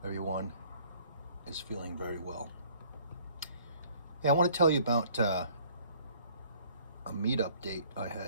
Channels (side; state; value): both; inverted; correlation -0.56